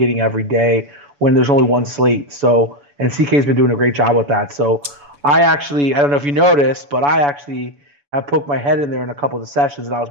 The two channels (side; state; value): left; late; 7.0 ms